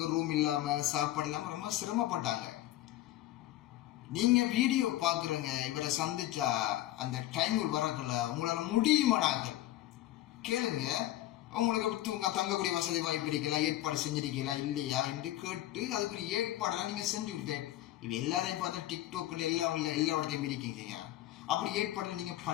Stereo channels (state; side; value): quieter; right; 15.0 dB